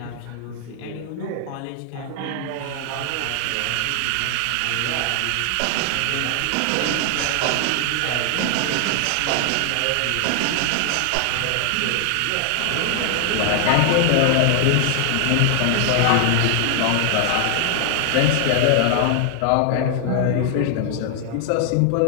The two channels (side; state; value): both; different; correlation 0.00